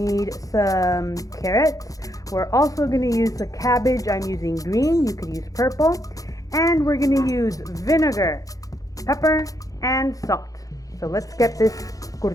some carrots. We're also going to use the cabbage. I'm using green. You could use purple. And we're going to use vinegar, pepper, and salt. So let's get this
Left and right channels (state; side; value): late; right; 0.17 ms